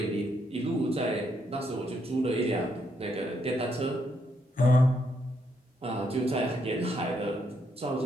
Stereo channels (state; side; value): normal; both; correlation 0.76